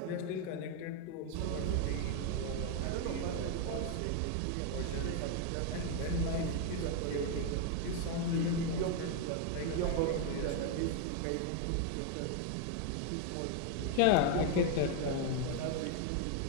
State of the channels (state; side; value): different; both; correlation 0.01